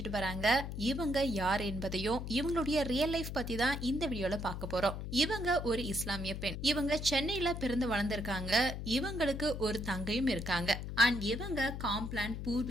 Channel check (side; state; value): left; noise; hum, 6 dB below the sound